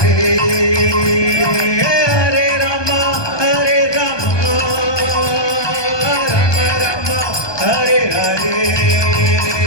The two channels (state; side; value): late; right; 1.2 ms